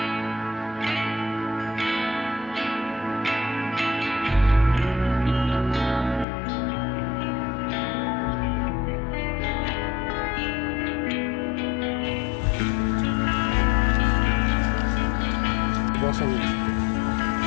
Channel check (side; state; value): right; drops out; at 6.2 s